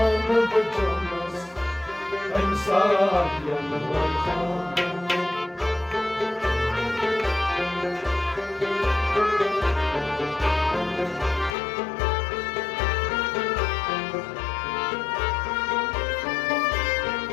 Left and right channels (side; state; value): right; drops out; at 11.6 s